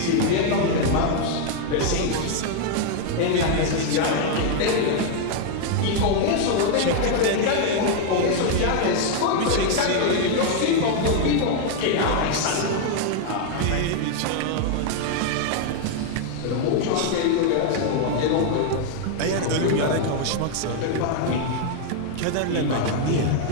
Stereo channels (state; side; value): different; both; correlation 0.00